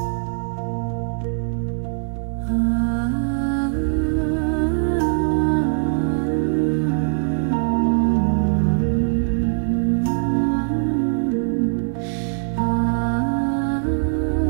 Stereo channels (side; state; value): left; silent; digital silence